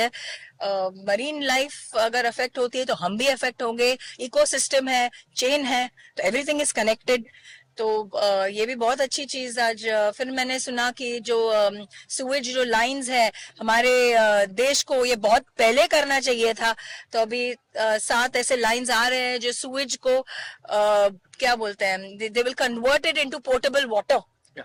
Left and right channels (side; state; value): both; identical; correlation 1.00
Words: मरीन लाइफ अगर अफेक्ट होती है तो हम भी अफेक्ट होंगे। इकोसिस्टम है, चेन है, तो एवरीथिंग इज कनेक्टेड। तो ये भी बहुत अच्छी चीज आज फिर मैंने सुना कि जो सुएज जो लाइंस है हमारे देश को, ये बहुत पहले करना चाहिए था। तो अभी 7 ऐसे लाइंस आ रहे हैं जो सुएज को क्या बोलते हैं, they will convert it into portable water,